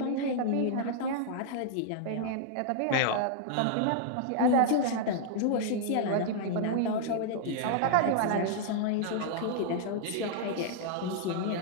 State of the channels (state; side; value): different; both; correlation -0.01